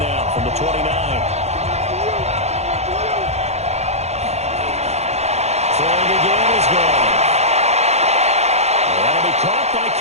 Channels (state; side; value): late; left; 0.31 ms